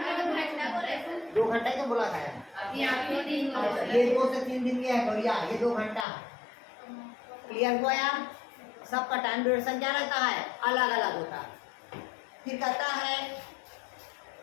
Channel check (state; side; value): drops out; right; at 6.1 s